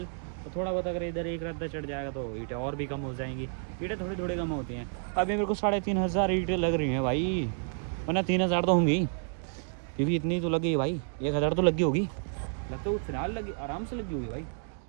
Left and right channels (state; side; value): silent; left; 58 dB below the other